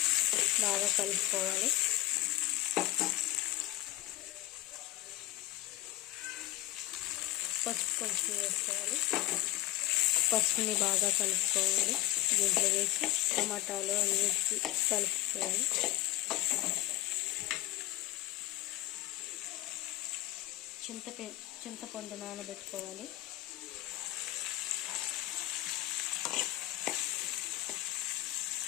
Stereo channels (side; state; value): right; quieter; 17.0 dB